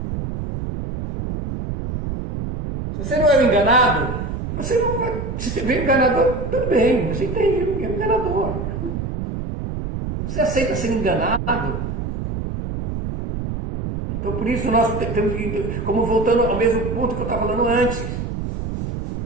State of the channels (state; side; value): noise; right; rumble, 5 dB below the sound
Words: Se você não é um enganado, você não vai. Se você vê um enganador, tudo bem, você entende, é um enganador. Se você aceita ser enganado, então por isso nós temos que, como voltando ao mesmo ponto que eu estava falando antes,